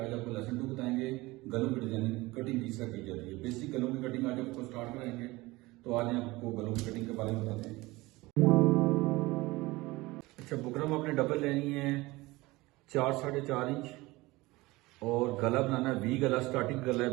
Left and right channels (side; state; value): left; quieter; 21.0 dB